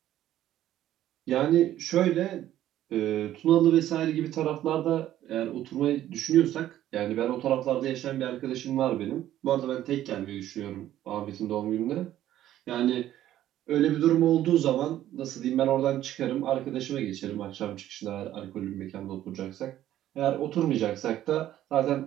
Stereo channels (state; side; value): quieter; left; 12.7 dB